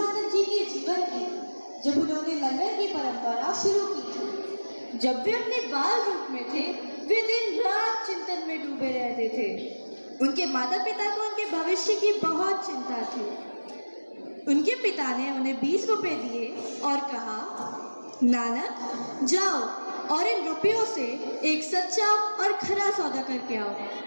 जी के जीवन की, जब उन्होंने लंगर की परंपरा शुरू की थी। जब वे अपने बाल रूप में थे, वे दिन रात चिंतन में डूबे रहते थे। उनके माता पिता को उनके भविष्य की बहुत चिंता थी। उनके पिता ने उन्हें 20 रुपए दिए और कहा, नानक जाओ और इन रुपयों से एक सच्चा और खरा सौदा करके आओ।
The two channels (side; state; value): both; inverted; correlation -1.00